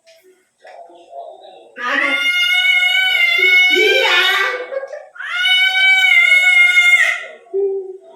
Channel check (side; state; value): both; identical; correlation 1.00